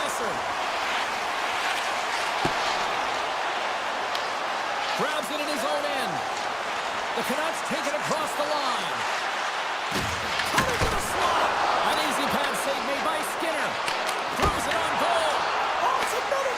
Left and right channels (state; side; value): identical; both; correlation 1.00